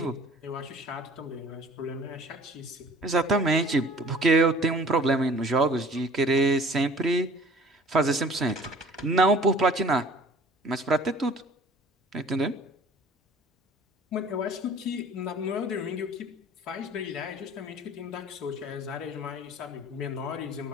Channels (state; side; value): normal; both; correlation 0.49